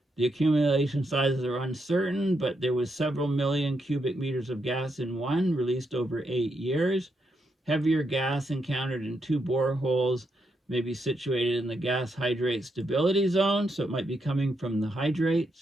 The accumulation sizes are uncertain, but there was several million cubic meters of gas in one, released over 8 years. Heavier gas encountered in 2 boreholes may be situated in the gas hydrate stability zone, so it might be coming from the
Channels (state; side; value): normal; both; correlation 0.81